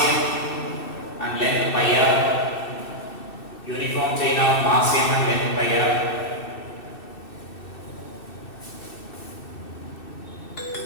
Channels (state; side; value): late; right; 2.6 ms